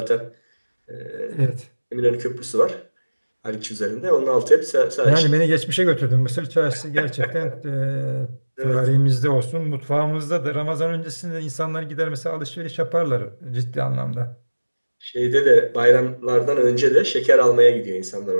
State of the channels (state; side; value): inverted; both; correlation -1.00